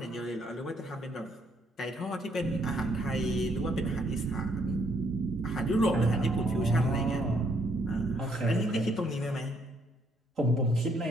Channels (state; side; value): normal; both; correlation 0.70